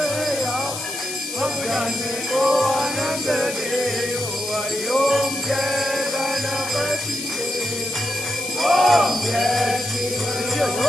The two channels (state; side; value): noise; left; hiss, 6 dB below the sound